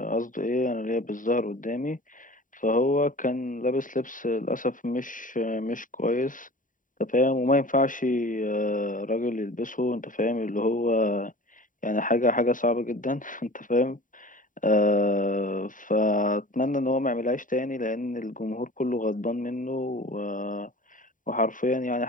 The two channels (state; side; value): late; right; 0.38 ms